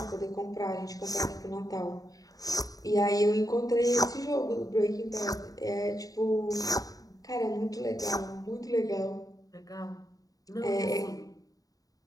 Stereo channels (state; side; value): late; right; 0.18 ms